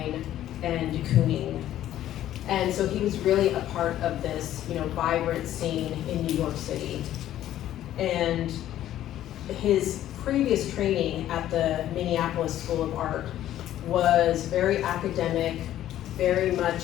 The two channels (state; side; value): quieter; right; 12.5 dB